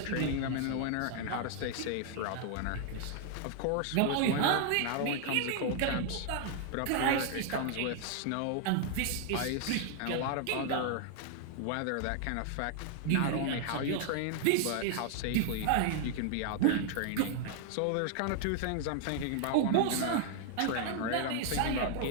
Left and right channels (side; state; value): both; different; correlation 0.00